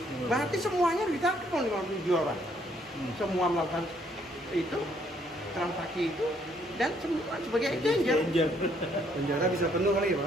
berarti semuanya ditangkap oleh 57 orang. Semua melakukan itu transaksi itu dan semua sebagai exchanger. Penjara bisa penuh kali ya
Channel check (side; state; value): both; normal; correlation 0.67